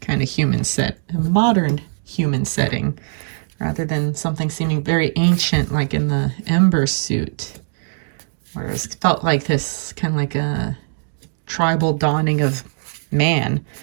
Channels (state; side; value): silent; left; digital silence